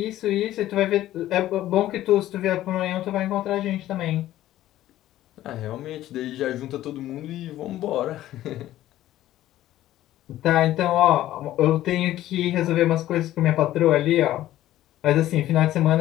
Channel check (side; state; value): right; quieter; 14.0 dB